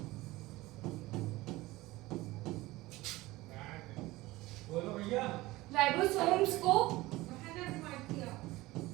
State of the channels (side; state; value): left; quieter; 19.2 dB